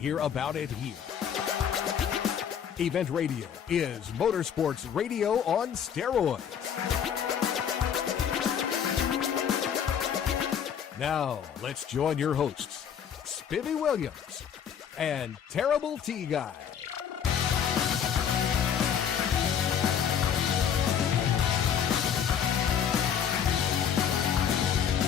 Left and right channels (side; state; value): right; quieter; 8.2 dB